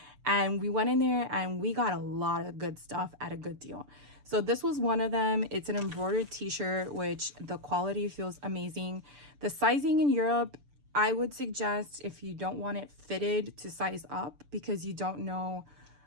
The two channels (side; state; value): left; late; 6.9 ms